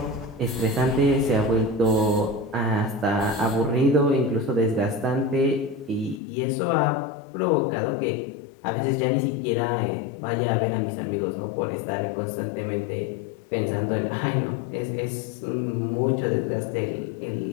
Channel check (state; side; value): drops out; right; at 6.2 s